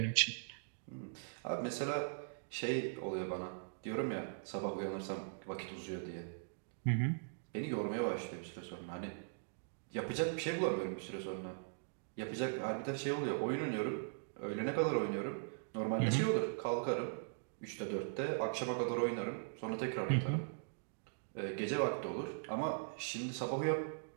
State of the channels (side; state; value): left; silent; digital silence